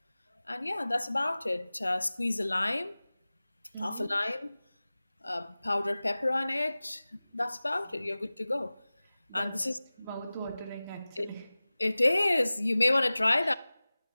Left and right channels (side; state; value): both; inverted; correlation -0.98